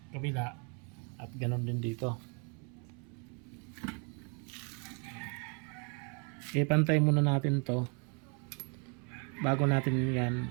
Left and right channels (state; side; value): quieter; left; 36.4 dB